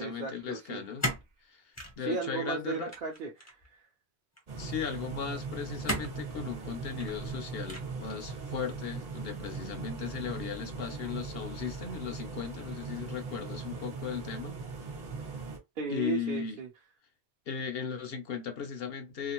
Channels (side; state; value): both; normal; correlation 0.08